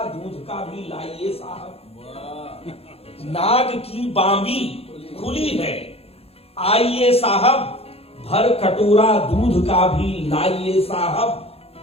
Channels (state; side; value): late; right; 0.29 ms